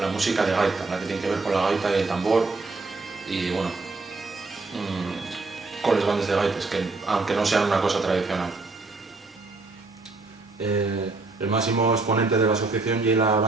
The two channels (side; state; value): left; quieter; 3.6 dB